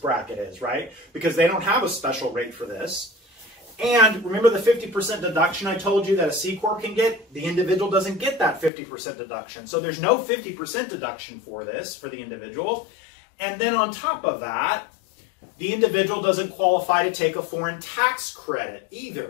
is, right? Because they don't have a special rate for this. And remember the 50% deduction I told you that a C-Corp can get? The individual doesn't get that 50% deduction. So there's no 50% deduction for this, for the individual. And then on top of that, the individual doesn't qualify to take a foreign tax credit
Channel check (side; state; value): right; drops out; at 8.7 s